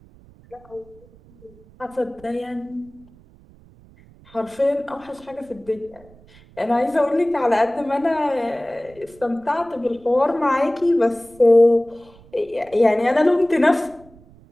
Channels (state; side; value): noise; right; rumble, 26 dB below the sound